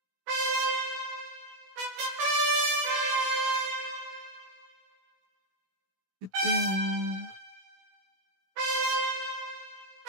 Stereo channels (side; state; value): left; late; 16 ms